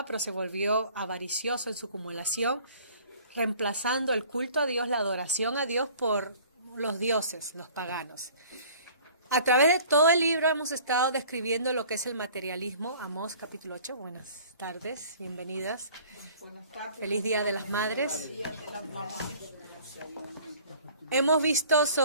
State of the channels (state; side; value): inverted; both; correlation -0.50